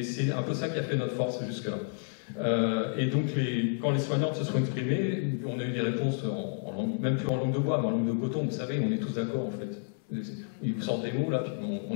c'est un peu ça qui a fait notre force jusque-là. Et donc, quand les soignantes se sont exprimées, on a eu des réponses, même plus en langue de bois, mais en langue de coton. Vous savez, on est tous d'accord, en fait. Ils vous sortent des mots, là, puis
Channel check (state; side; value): silent; right; 57 dB below the other